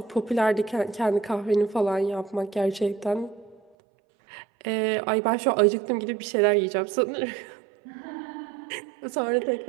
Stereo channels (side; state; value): left; drops out; at 3.6 s